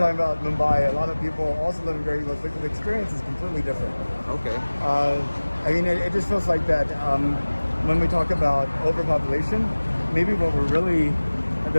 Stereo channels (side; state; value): both; inverted; correlation -1.00